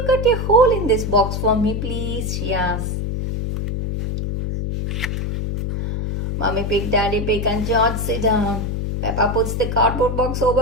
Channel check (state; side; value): noise; left; hum, 2 dB below the sound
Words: cut a hole in this box for me, please? She asks. Mommy Pig, Daddy Pig and George sit down. Peppa puts the cardboard box